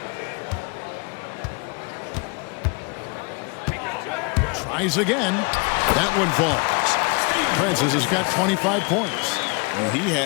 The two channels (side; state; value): right; quieter; 30.9 dB